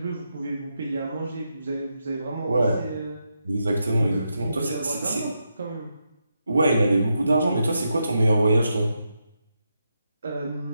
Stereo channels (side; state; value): both; inverted; correlation -0.84